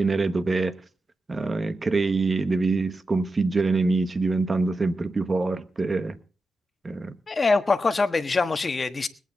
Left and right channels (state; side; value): normal; both; correlation 0.89